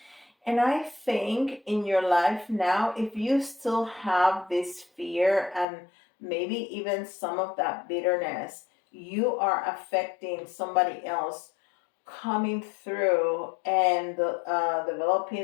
And I think in your life now, if you still have this fear and maybe even some of that bitterness, you are affecting somebody else coming through and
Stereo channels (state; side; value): drops out; right; at 5.7 s